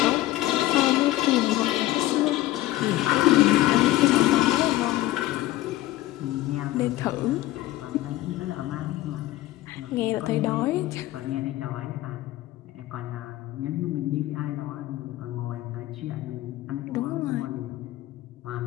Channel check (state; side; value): quieter; right; 16.1 dB